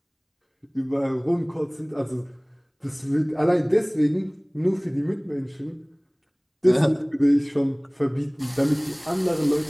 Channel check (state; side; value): identical; both; correlation 1.00